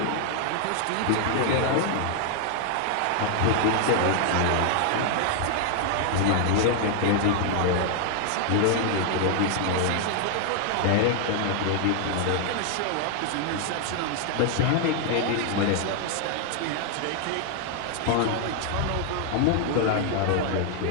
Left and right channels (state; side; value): different; both; correlation 0.00